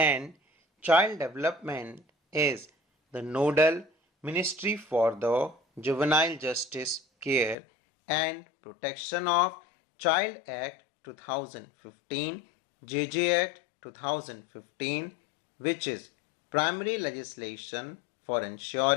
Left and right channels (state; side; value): drops out; right; at 7.6 s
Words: Child Development is the nodal ministry for the Juvenile Justice Care and Protection of Child Act 2015, JJ Act 2015, which is primary legislation for